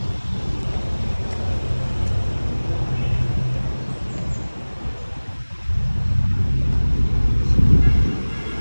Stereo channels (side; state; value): both; inverted; correlation -1.00